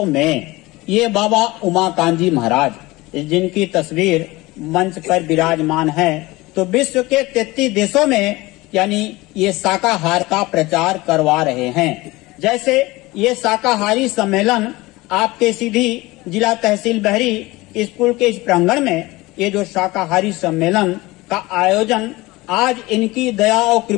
में ये बाबा उमाकांत जी महाराज जिनकी तस्वीर मंच पर विराजमान है, तो विश्व के 33 देशों में यानी ये शाकाहार का प्रचार करवा रहे हैं। जैसे ये शाकाहारी सम्मेलन आपके सीधी जिला तहसील बहरी स्कूल के इस प्रांगण में ये जो शाकाहारी सम्मेलन का आयोजन आज इनकी दया और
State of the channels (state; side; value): quieter; right; 20.8 dB